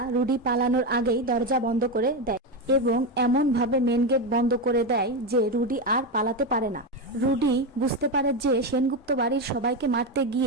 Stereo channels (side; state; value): both; normal; correlation 0.12